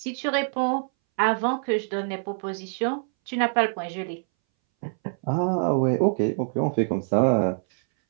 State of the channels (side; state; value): left; silent; 61 dB below the other